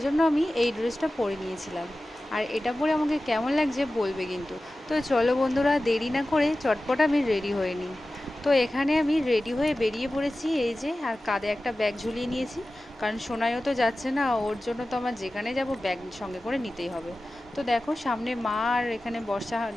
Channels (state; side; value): normal; both; correlation 0.95